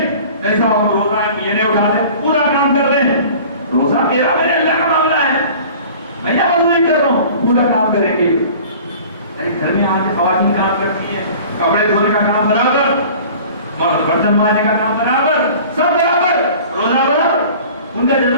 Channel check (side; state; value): both; inverted; correlation -0.44